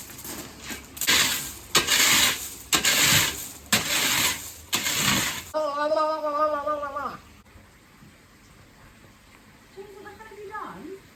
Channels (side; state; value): both; identical; correlation 1.00